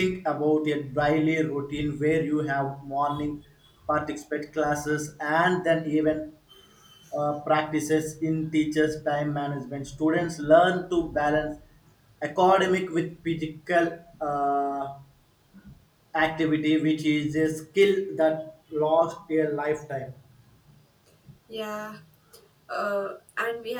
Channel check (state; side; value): identical; both; correlation 1.00